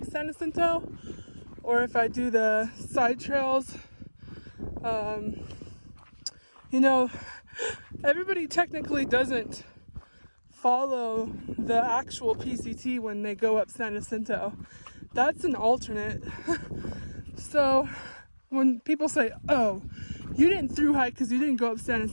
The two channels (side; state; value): both; inverted; correlation -1.00